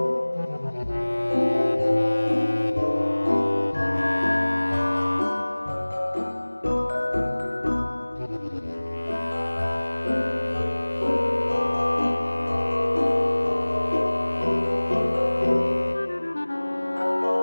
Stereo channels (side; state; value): both; inverted; correlation -1.00